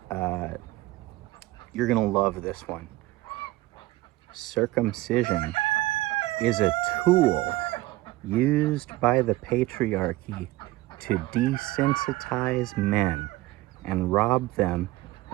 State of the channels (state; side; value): quieter; left; 18.4 dB